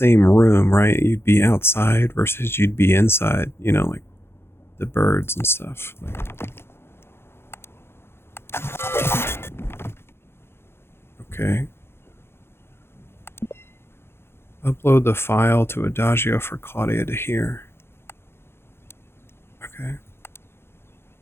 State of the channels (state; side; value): late; right; 0.12 ms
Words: room, right? You'd be outside versus you'd be inside, you know, like the birds and stuff. Okay. Upload the file to Adagio for Claudia to hear. Okay.